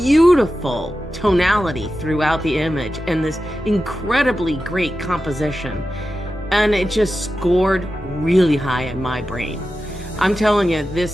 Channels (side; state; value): both; normal; correlation 0.92